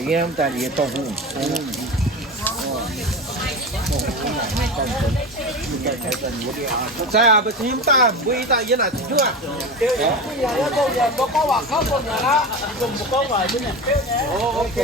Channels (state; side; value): normal; both; correlation 0.26